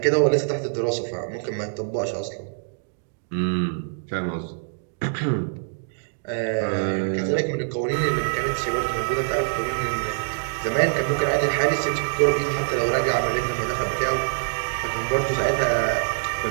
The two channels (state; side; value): silent; left; digital silence